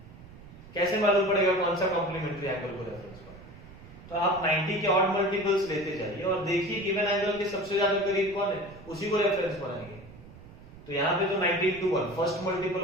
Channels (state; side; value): noise; right; rumble, 18 dB below the sound